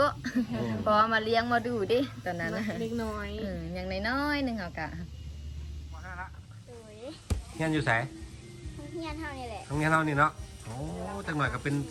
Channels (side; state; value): both; identical; correlation 1.00